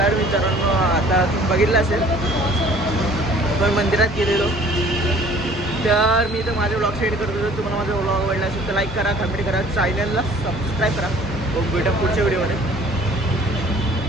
तर मित्रांनो आता तुम्ही बघितलं असेल पण मंदिरात गेलेलो. तर मी तर माझे व्लॉग शेअर करतो. जर तुम्हाला माझा व्लॉग आवडला असेल तर लाईक करा, कमेंट करा, चॅनलला सबस्क्राईब करा. भेटा पुढच्या व्हिडिओमध्ये.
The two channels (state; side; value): normal; both; correlation 0.52